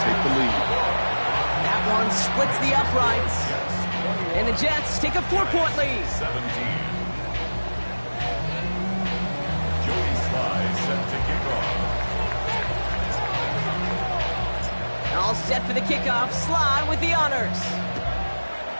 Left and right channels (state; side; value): inverted; both; correlation -1.00